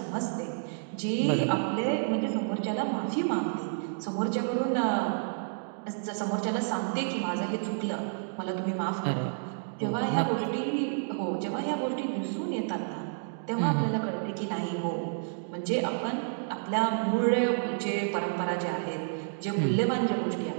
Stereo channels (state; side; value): silent; left; digital silence